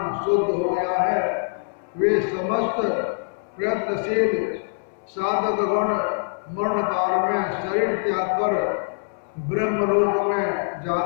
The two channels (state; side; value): silent; right; digital silence